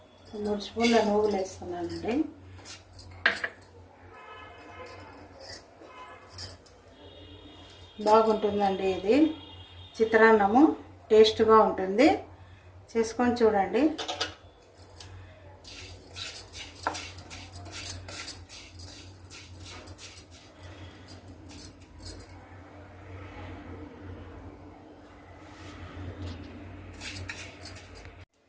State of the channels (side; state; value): both; identical; correlation 1.00